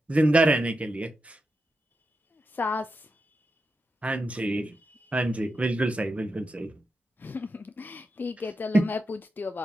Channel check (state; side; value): normal; both; correlation 0.88